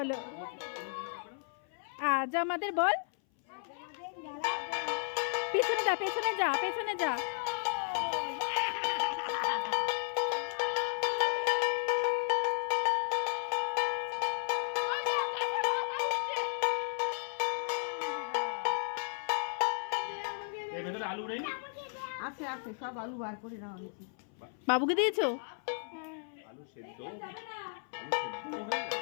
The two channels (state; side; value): silent; right; 55 dB below the other